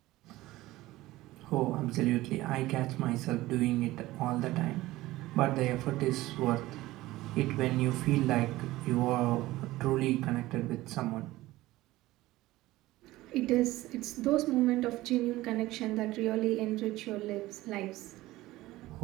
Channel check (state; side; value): quieter; left; 17.6 dB